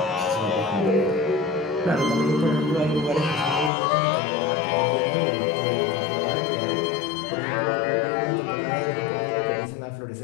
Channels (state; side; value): drops out; right; at 3.7 s